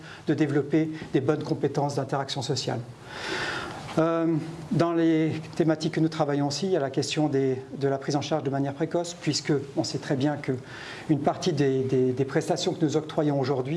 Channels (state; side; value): identical; both; correlation 1.00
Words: de développer des bonnes compétences d'interaction sociale. Dans les thématiques que nous travaillons aussi, il y a la question de la prise en charge de manière précoce, puisque on sait très bien qu'une partie des prestations que nous octroyons